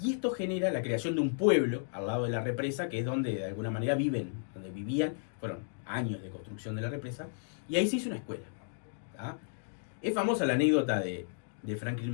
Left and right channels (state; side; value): silent; right; digital silence